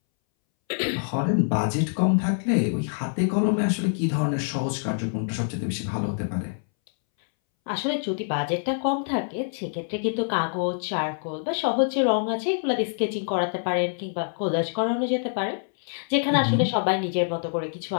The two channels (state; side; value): silent; right; 61 dB below the other